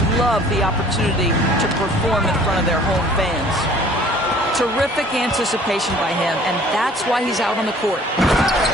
love the opportunity to perform in front of their home fans. Terrific anticipation by him, and that's why he's out on the court.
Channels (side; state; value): both; normal; correlation 0.52